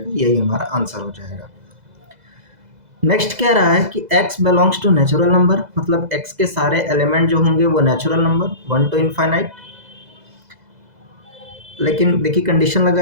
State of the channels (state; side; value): late; left; 2.0 ms